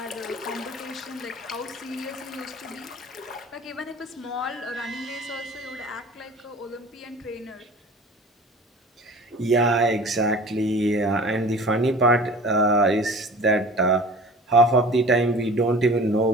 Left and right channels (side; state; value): both; normal; correlation 0.42